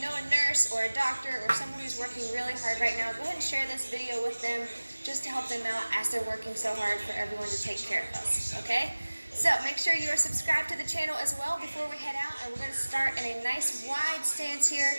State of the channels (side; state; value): both; inverted; correlation -1.00